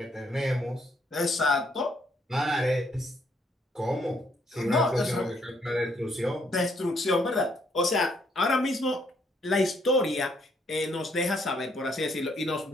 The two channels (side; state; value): both; normal; correlation 0.71